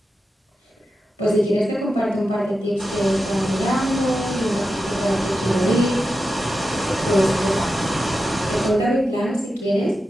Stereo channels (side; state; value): both; normal; correlation 0.90